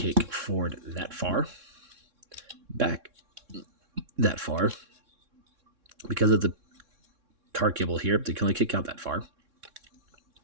forward that far, back that far. Because of the car cable here, they can only kick out that far.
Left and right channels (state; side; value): late; left; 3.6 ms